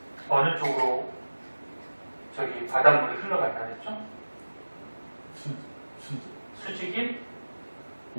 어느 쪽으로 저기 바닷물이 흘러간다 했죠? 수직인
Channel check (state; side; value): inverted; both; correlation -1.00